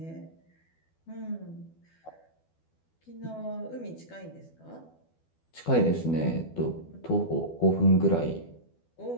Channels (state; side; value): late; right; 12 ms